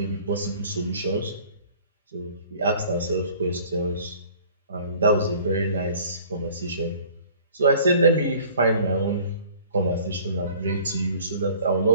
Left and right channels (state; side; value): inverted; both; correlation -0.51